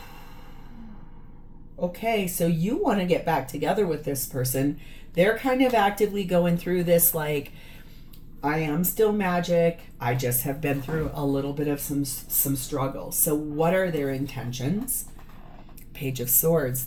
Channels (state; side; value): identical; both; correlation 1.00